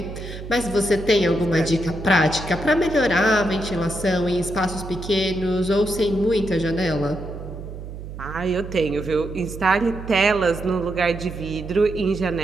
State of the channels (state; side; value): noise; right; hum, 10 dB below the sound